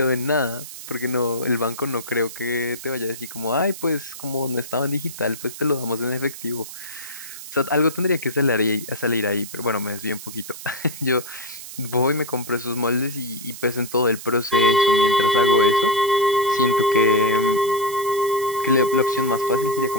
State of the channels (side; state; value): right; noise; hiss, 12 dB below the sound